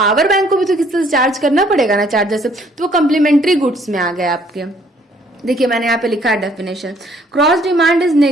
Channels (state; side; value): normal; both; correlation 0.62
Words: बैंक को भी तो किसी से चार्ज करना पड़ेगा ना चार्जर से, तो वो कम्प्लीमेंट्री गुड्स में आ गए आपके। देखिए मैंने यहाँ पे लिखा है definition, cross demand is